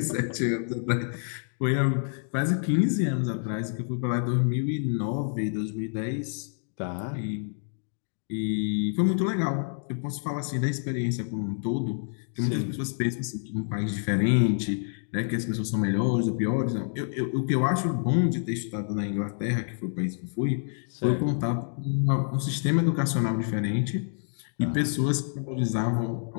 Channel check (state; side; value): silent; right; digital silence